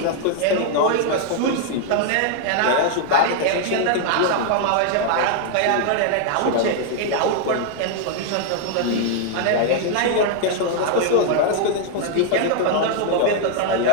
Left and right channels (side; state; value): both; different; correlation 0.00